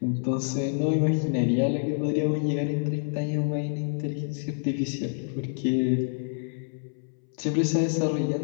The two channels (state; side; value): silent; right; 60 dB below the other